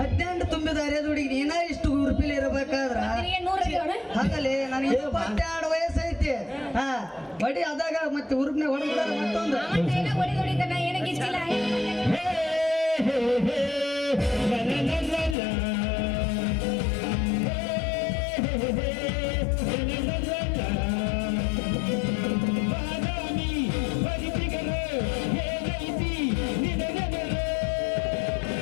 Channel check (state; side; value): drops out; right; at 15.4 s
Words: ತುಂಬಿದ ಅರೆದ ಹುಡುಗಿ ನೀನ ಇಷ್ಟು ಉರುಪಿಲಿ ಇರಬೇಕಾದ್ರ ಹಾಗಲೇ ನನಗೆ 22 ವಯಸ್ಸೈತಿ. ಹಾ ಬಡಿ ಅದಾಗ ಮತ್ತೆ ಉರುಪ್ನೆ ಹೊಡೆದ ಮತ್ತೊಂದು